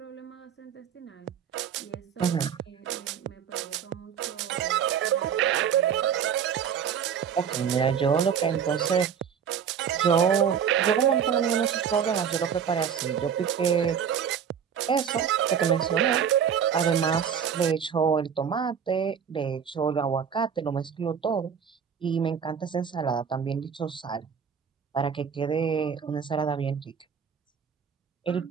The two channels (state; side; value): quieter; left; 7.7 dB